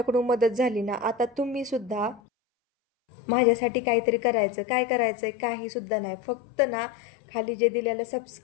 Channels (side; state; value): right; drops out; at 2.2 s